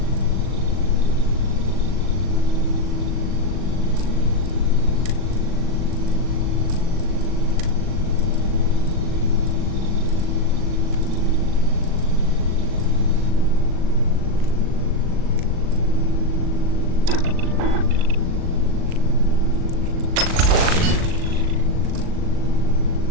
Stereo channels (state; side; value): late; left; 39 ms